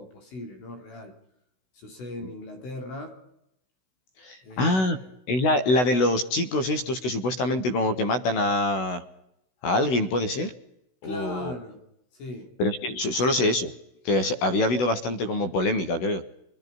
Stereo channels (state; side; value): late; right; 16 ms